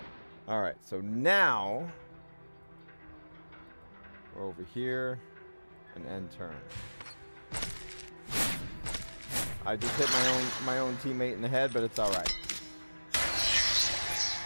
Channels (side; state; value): both; inverted; correlation -1.00